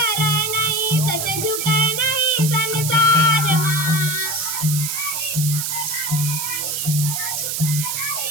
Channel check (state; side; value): noise; right; hiss, 2 dB below the sound